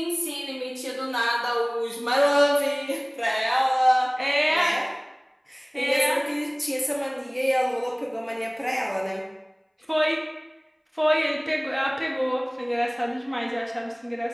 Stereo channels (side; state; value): both; identical; correlation 1.00